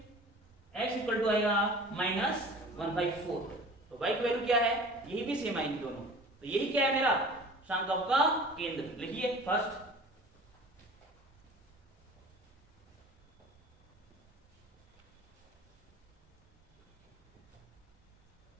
x इक्वल टू आएगा माइनस 1/4, तो y की वैल्यू क्या है, यही भी सेम आएगी दोनों, तो यही क्या है मेरा संकल्प का केंद्र, लिखिए फर्स्ट,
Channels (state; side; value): normal; both; correlation 0.42